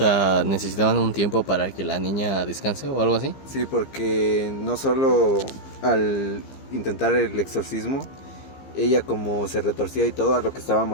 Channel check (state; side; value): late; right; 15 ms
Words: ¿necesitaban un tiempo para que la niña descanse o algo así? Sí, porque no solo al intentar el exorcismo, ella como se retorcía y todo, a lo que estaba